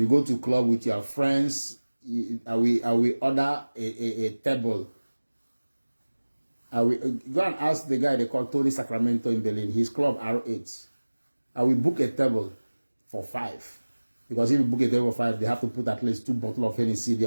go to club with your friends, I will order a table. I will go and ask the guy they call Tony Sacramento in Berlin, his club R8. I will book a table for 5. Because if you book a table for 5, they have to put at least 2 bottles of Hennessy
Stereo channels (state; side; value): inverted; both; correlation -1.00